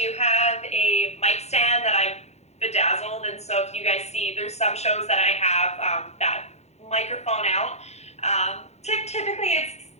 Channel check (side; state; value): right; late; 0.31 ms